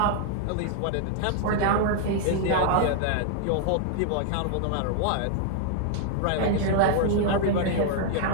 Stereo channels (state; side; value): different; both; correlation 0.00